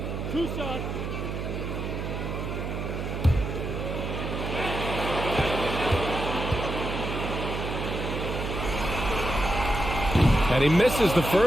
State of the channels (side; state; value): right; noise; hum, 4 dB below the sound